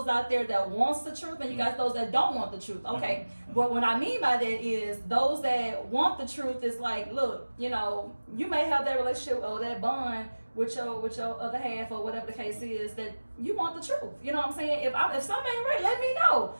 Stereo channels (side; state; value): both; inverted; correlation -1.00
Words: out there that wants the truth, and you got those that don't want the truth. Okay, but what I mean by that is those that want the truth is like, look, you know, you may have that relationship or that bond with your other half or whatever the case is that you want the truth. You know what I'm saying? If something ain't right, let me know